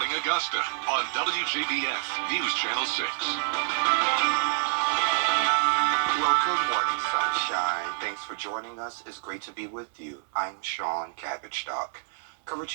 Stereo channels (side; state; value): left; silent; 60 dB below the other